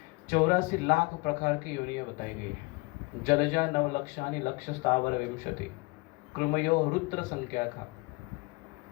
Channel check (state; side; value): quieter; right; 25.6 dB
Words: 84 लाख प्रकार की योनियां बताई गई है। जलजा नवलक्षानि लक्ष स्थावर विंशति कृमयो रुद्र संख्या का,